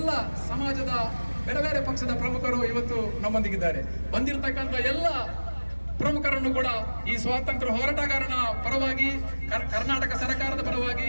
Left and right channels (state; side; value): inverted; both; correlation -1.00